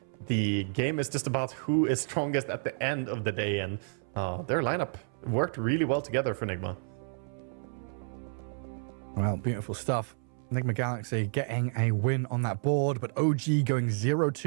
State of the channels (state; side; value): silent; left; 57 dB below the other